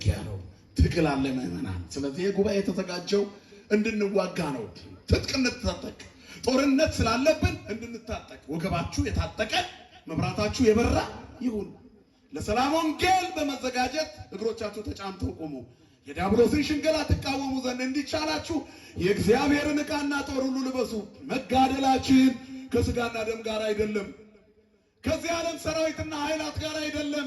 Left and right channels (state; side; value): identical; both; correlation 1.00